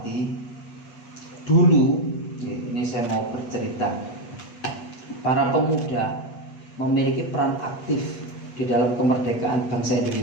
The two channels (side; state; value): right; late; 8.3 ms